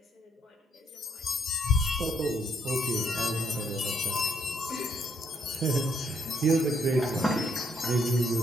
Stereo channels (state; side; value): normal; both; correlation 0.70